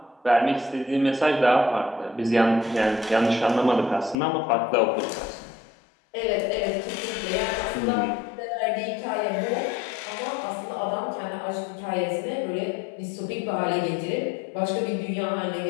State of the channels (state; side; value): drops out; right; at 4.2 s